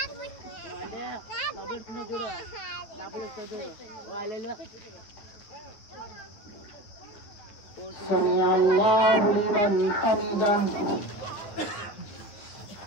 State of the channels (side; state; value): right; late; 9.8 ms